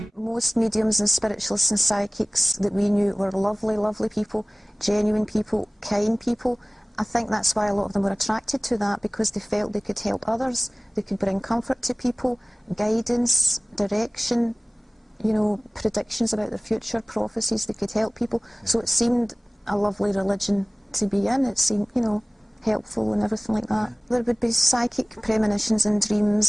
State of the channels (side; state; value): both; normal; correlation 0.98